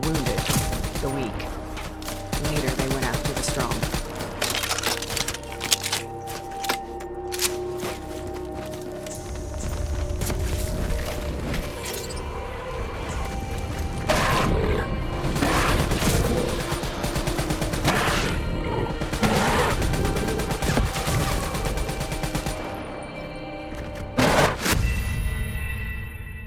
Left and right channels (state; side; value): identical; both; correlation 1.00